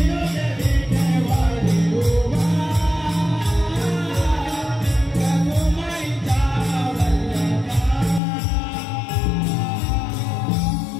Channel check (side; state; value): right; drops out; at 8.2 s